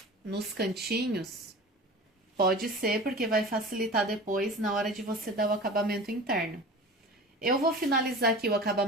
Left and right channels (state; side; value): normal; both; correlation 0.37